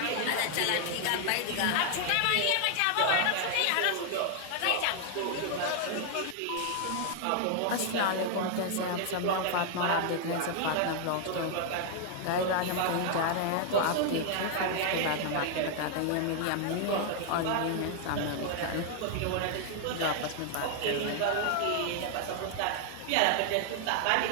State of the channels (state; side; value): different; both; correlation 0.00